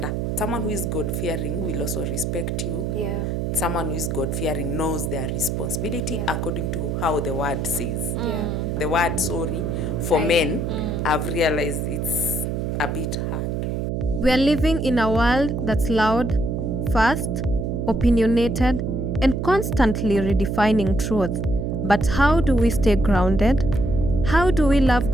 Someone who is God fearing will also respect you. Yeah. Someone who is God fearing knows their responsibility according to how the word says. The word sorry for men, I've realized it's a bit hard. We are living in a world that's loud, fast, opinionated, and constantly redefining truth. But how do we stay grounded? How do we love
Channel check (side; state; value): right; noise; hum, 1 dB below the sound